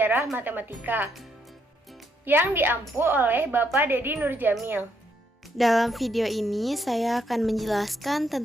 Matematika yang diampu oleh Bapak Dedi Nurjamil. Dalam video ini saya akan menjelaskan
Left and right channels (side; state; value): both; normal; correlation 0.74